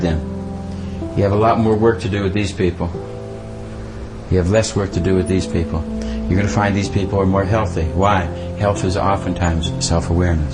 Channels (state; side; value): identical; both; correlation 1.00